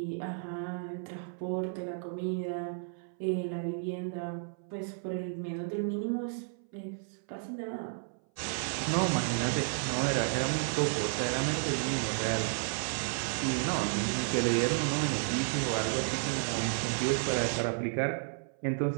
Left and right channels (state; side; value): silent; left; 56 dB below the other